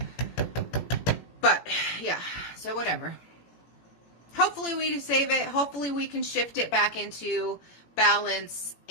But yeah, so whatever. Hopefully we save it. Hopefully we can shift it back into balance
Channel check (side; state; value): right; late; 18 ms